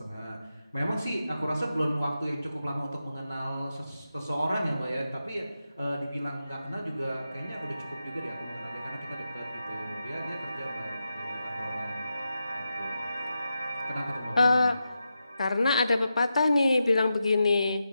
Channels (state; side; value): inverted; both; correlation -0.89